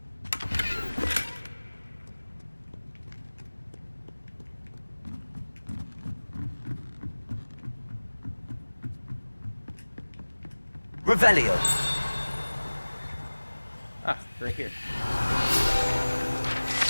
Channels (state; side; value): inverted; both; correlation -1.00